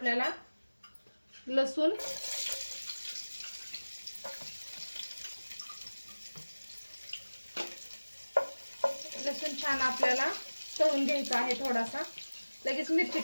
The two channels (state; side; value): inverted; both; correlation -1.00